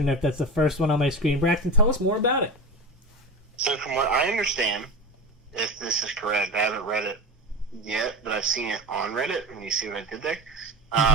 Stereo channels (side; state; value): both; normal; correlation 0.26